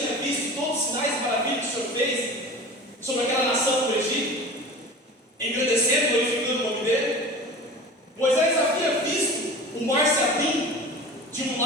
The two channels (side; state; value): both; normal; correlation 0.36